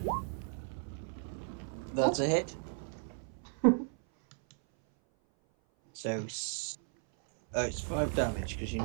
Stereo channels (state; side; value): silent; left; 55 dB below the other